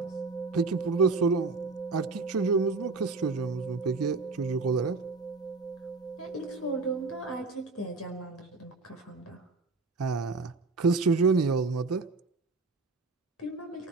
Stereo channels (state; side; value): quieter; left; 4.0 dB